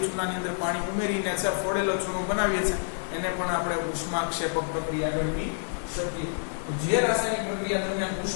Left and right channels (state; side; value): silent; right; digital silence